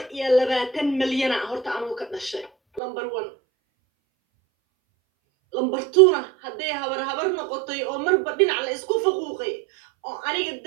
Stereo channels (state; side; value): drops out; left; at 2.8 s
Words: milyan horta anuu ka dhashay number 1 number 2 hadday habar noqotay oo marba dhinac la isku faquuqay oo aniga